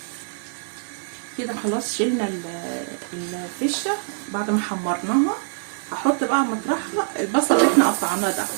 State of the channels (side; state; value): left; silent; 60 dB below the other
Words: كده خلاص شلنا الفشه بعد ما حمرناها. هحط بقى مطرحها البصل اللي احنا قطعناه ده.